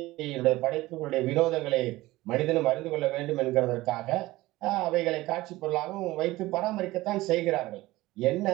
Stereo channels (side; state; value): left; quieter; 18.4 dB